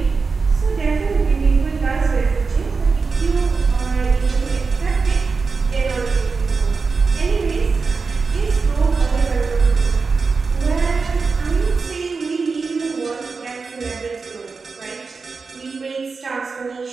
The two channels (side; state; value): left; quieter; 4.6 dB